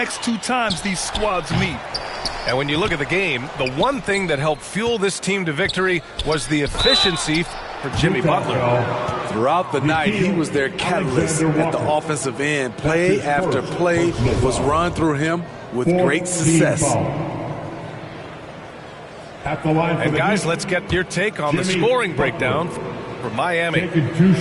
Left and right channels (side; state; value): both; identical; correlation 1.00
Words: 2 times these squads meet. And when you look at the game, the one thing that helped fuel this team to victory was the efficiency for Jimmy Butler. Throughout the night, he was their catalyst at the offensive end. Play after play was run through him with great success. At the line for And the guys, Heat, let's get your take on the Jimmy scoring Butler. breakdown for Miami. taking 2